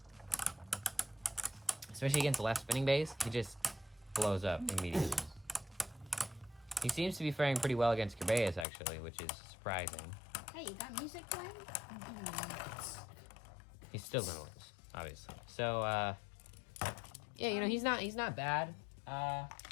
Especially against left spinning bass, he just blows up immediately. He seems to be faring pretty well against Kerbeus, actually, which is surprising. Hey, you got music playing? He's still gonna lose, obviously. So, yeah, you know, he's not bad.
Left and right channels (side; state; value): right; drops out; at 8.7 s